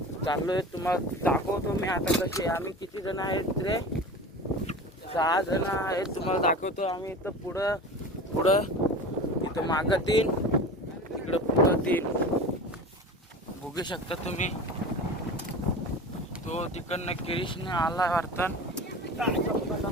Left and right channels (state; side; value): normal; both; correlation 0.33